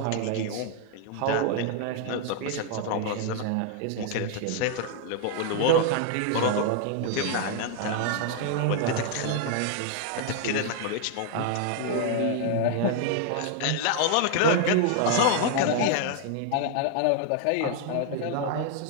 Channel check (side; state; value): both; different; correlation 0.00